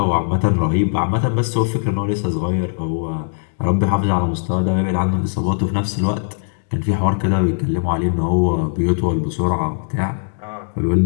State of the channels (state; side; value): silent; right; digital silence